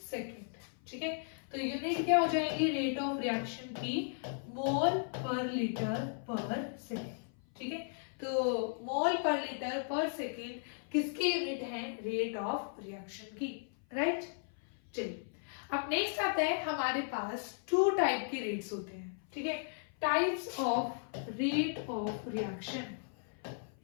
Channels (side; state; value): right; silent; 54 dB below the other